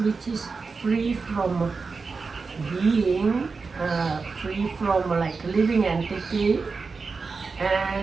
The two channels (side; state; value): left; quieter; 4.6 dB